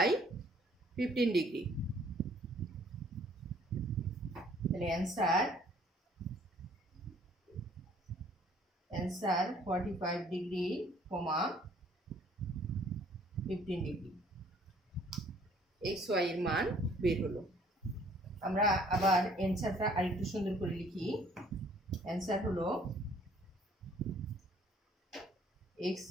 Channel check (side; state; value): both; normal; correlation 0.59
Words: y 15 ডিগ্রি। তাহলে answer 45 degree, 15 degree x y এর মান বের হলো। আমরা আবার অ্যান্সারটা আরেকটু সুন্দর করে লিখি। অ্যান্সার হলো x